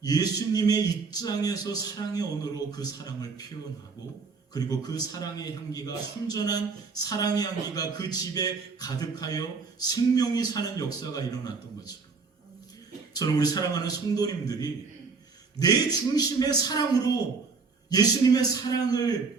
예수님의 입장에서 사랑의 언어로 그 사랑을 표현하고, 그리고 그 사랑의 향기가, 순전한 사랑의 향기가 그 집에 가득하여 생명이 사는 역사가 일어났던 것처럼, 저는 우리 사랑하는 성도님들이 내 중심의 사랑으로 예수님의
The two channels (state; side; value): quieter; left; 4.7 dB